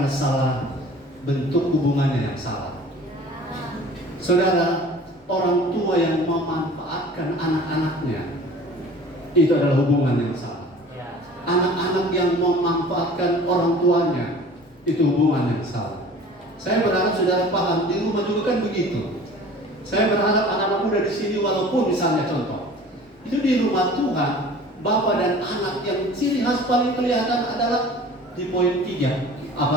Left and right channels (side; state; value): both; normal; correlation 0.45